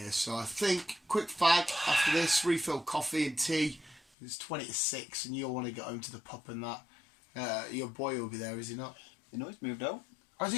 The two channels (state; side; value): drops out; right; at 4.0 s